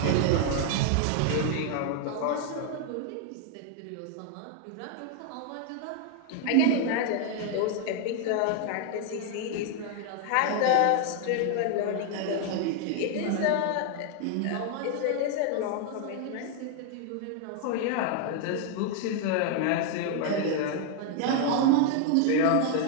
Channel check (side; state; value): both; different; correlation 0.00